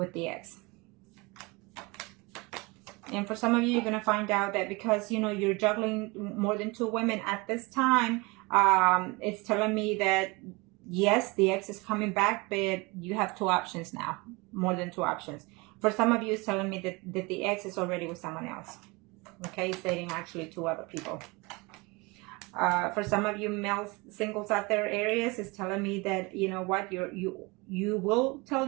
the ex. And for some of you, you're going to find out that because, you know, you're juggling more than 2 women at this time, it's telling me that, yes, the ex is coming back, but you have 2 options now, more than 2 options. For some of you, it's telling me that the ex is already with someone else. Okay, it's dating actually 2 other people. For some of you male singles out there, Aries, is telling me that, you know what, you will tell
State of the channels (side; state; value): left; quieter; 25.5 dB